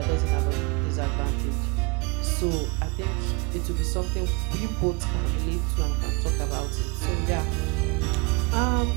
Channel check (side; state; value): left; quieter; 28.5 dB